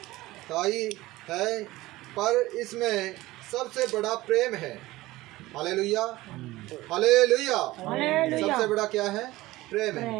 है, पर इसमें सबसे बड़ा प्रेम है। Hallelujah, hallelujah. सबसे बड़ा क्या है? प्रेम है।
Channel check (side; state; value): left; quieter; 18.2 dB